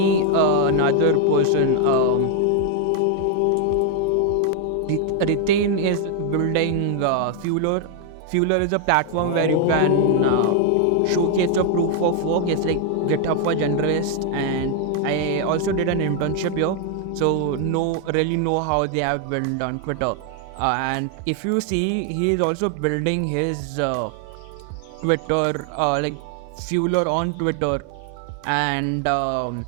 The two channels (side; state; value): both; different; correlation 0.00